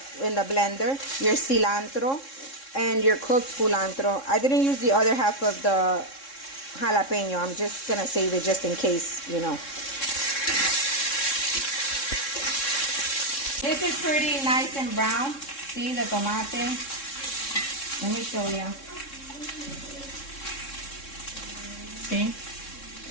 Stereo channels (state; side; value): late; right; 3.7 ms